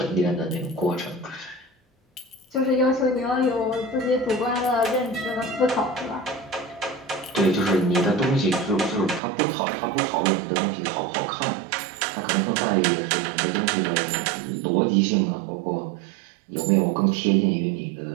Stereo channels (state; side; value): drops out; left; at 9.2 s